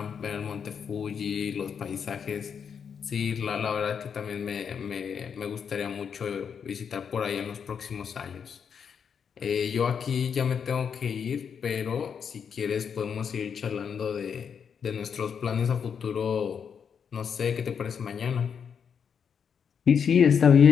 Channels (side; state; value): right; quieter; 7.1 dB